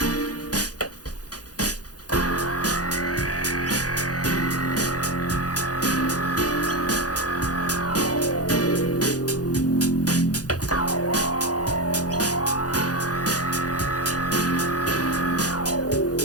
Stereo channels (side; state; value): right; late; 0.68 ms